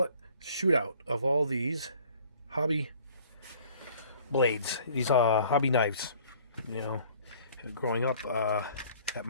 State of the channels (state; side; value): inverted; both; correlation -0.54